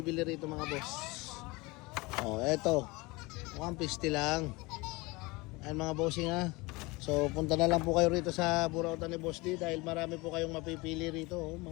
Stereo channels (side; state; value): right; quieter; 24.0 dB